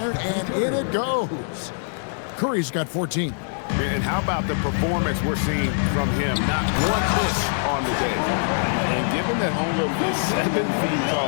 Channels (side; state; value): right; silent; 62 dB below the other